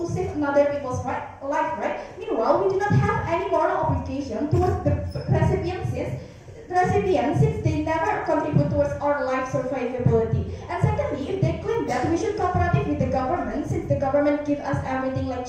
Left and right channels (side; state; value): both; identical; correlation 1.00